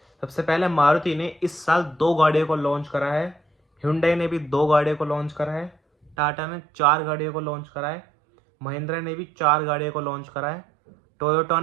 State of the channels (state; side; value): drops out; left; at 6.2 s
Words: सबसे पहले मारुति ने इस साल 2 गाड़ियों को लॉन्च करा है, Hyundai ने भी 2 गाड़ियों को लॉन्च करा है, टाटा ने 4 गाड़ियों को लॉन्च करा है, महिंद्रा ने भी 4 गाड़ियों को लॉन्च करा है, टोयोटा